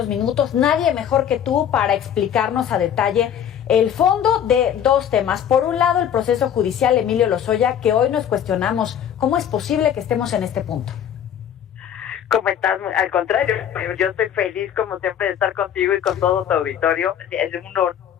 minutos. Nadie mejor que tú para explicarnos a detalle el fondo de dos temas. Por un lado, el proceso judicial Emilio Lozoya, que hoy nos cuestionamos cómo es posible que estemos en este punto. ¿Cómo estás? Al contrario, yo estoy feliz como siempre de estar contigo y con todo tu auditorio. Es un honor,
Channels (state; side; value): quieter; right; 9.4 dB